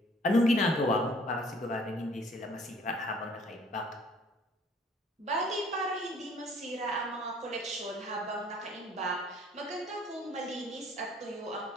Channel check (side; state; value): both; normal; correlation 0.56